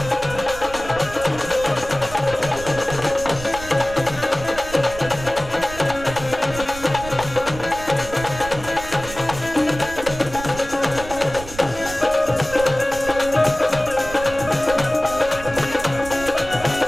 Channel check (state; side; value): noise; right; rumble, 13 dB below the sound